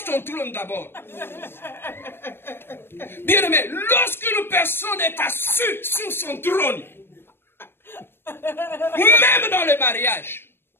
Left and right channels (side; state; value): right; late; 0.11 ms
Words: ton trône d'abord. Bien aimé, lorsqu'une personne est assise sur son trône, même dans le mariage,